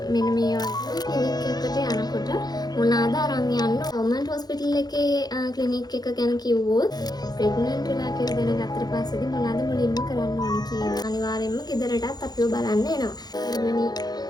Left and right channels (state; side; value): late; right; 0.19 ms